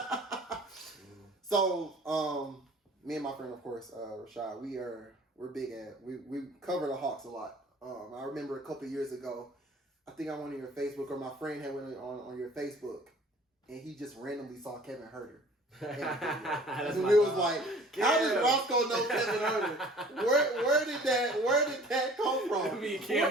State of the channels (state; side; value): normal; both; correlation 0.49